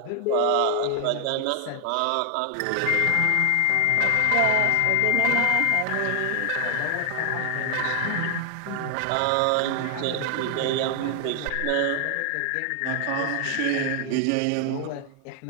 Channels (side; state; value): both; different; correlation 0.00